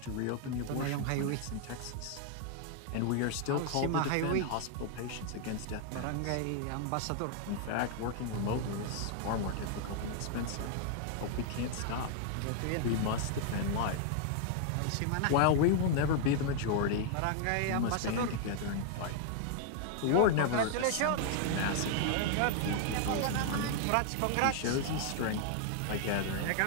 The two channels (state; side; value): different; both; correlation 0.00